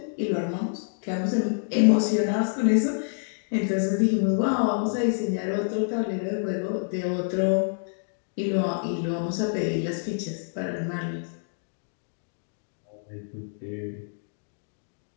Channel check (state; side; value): silent; right; digital silence